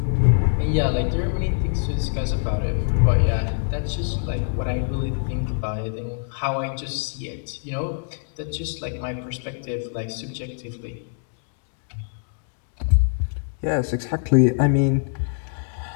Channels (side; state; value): right; silent; digital silence